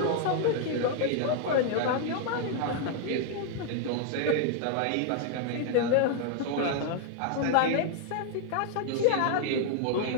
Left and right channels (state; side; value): different; both; correlation 0.00